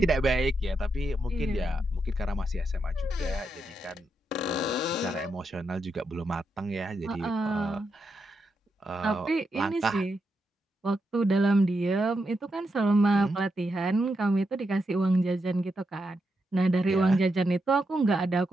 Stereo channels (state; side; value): normal; both; correlation 0.84